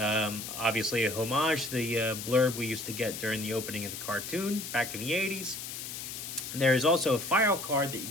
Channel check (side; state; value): left; noise; hiss, 8 dB below the sound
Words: a homage to the blurb we used to get during the opening of the cartoon back in the 80s. There is also a file card that you